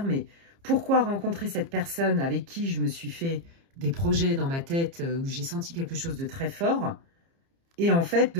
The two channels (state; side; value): late; left; 30 ms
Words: mais pourquoi rencontrer cette personne avec qui je me suis fait des projets dans ma tête, où j'ai senti quelque chose de très fort, et en fait,